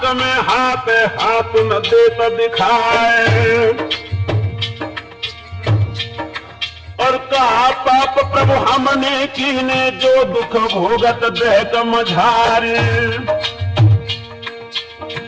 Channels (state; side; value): identical; both; correlation 1.00